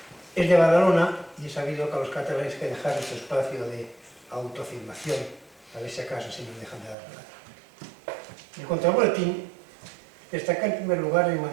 es de Badalona, y he sabido que a los catalanes hay que dejar ese espacio de autoafirmación, a ver si acaso si nos dejan de dar nada. En cuanto al boletín, destaca en primer lugar el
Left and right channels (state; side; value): drops out; left; at 7.0 s